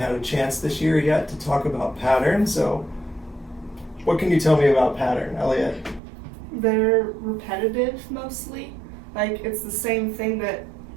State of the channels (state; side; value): drops out; left; at 6.0 s